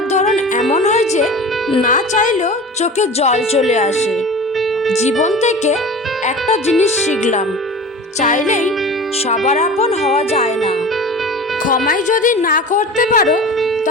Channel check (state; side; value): normal; both; correlation 0.35